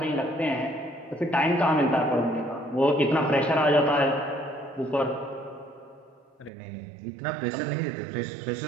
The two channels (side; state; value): left; drops out; at 6.5 s